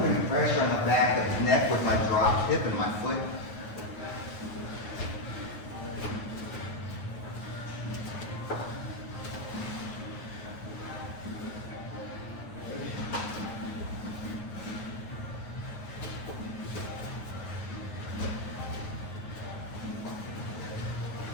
pressure on the back of his neck with my dropped hip and my foot.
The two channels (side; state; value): right; late; 9.5 ms